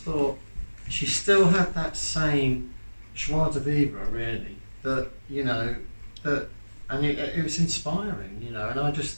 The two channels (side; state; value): both; inverted; correlation -1.00